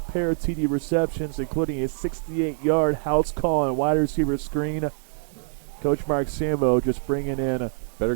pair of TD receptions, including a 68-yard house call and wide receiver screen. Coach Mark Sambo just bringing in better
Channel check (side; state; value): left; silent; digital silence